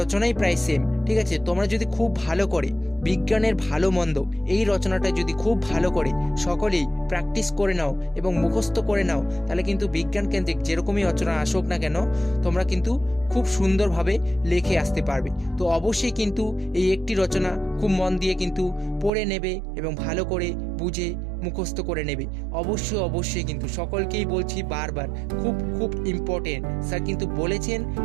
প্রায় সেম, ঠিক আছে। তোমরা যদি খুব ভালো করে বিজ্ঞানের ভালো মন্দ এই রচনাটা যদি খুব ভালো করে সকলেই প্র্যাকটিস করে নাও এবং মুখস্থ করে নাও, তাহলে কিন্তু বিজ্ঞান কেন্দ্রিক যেরকমই রচনা আসুক না কেন তোমরা কিন্তু খুব সুন্দরভাবে লিখে আসতে পারবে। তো অবশ্যই কিন্তু এই একটি রচনা খুব মন দিয়ে কিন্তু পড়ে নেবে এবং ভালো করে বুঝে মুখস্থ করে নেবে। অবশ্যই অবশ্যই কিন্তু সকলকেই বলছি বারবার, খুব খুব ইম্পর্টেন্ট, স্যার কিন্তু বলেছেন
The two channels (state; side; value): drops out; left; at 19.1 s